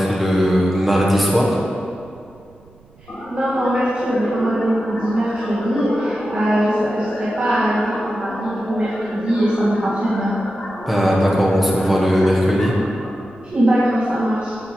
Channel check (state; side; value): noise; right; rumble, 28 dB below the sound